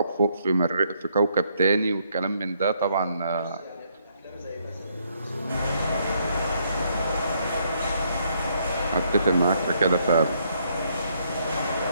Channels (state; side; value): inverted; both; correlation -0.71